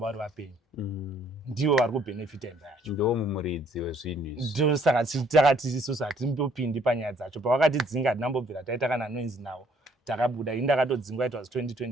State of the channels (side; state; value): both; normal; correlation 0.63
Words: vari vapenyu. Ndivo vari kubenefita imba yacho. Ndo mumuridzi wezvinhu izvi. Ndo saka takati isusu hatimbopindi panyaya dzacho. Pavakatidzinga hatinambobvira taita kana noise nawo. Takabuda ini ndakatodzingwa it was